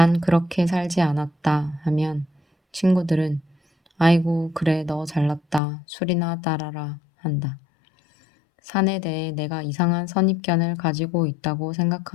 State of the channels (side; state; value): right; drops out; at 5.6 s